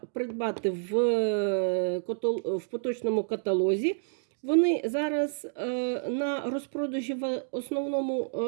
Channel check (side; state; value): left; silent; digital silence